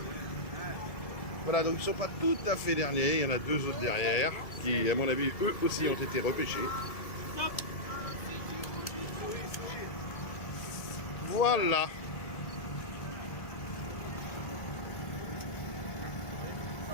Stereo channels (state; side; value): late; right; 1.7 ms